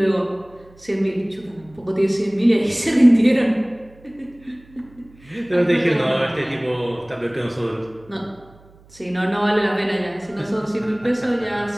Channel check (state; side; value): noise; right; hum, 26 dB below the sound